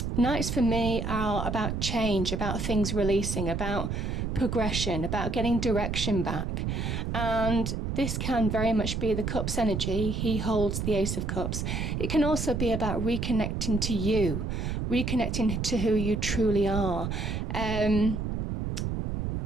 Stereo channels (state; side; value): noise; right; rumble, 2 dB below the sound